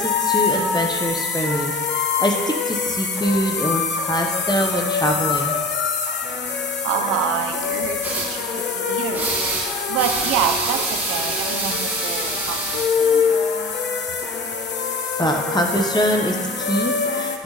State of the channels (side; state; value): both; normal; correlation 0.36